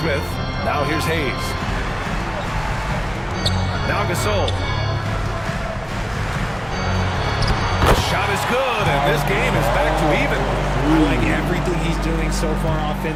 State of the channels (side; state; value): both; identical; correlation 1.00